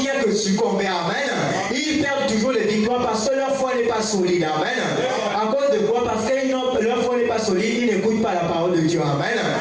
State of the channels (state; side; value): identical; both; correlation 1.00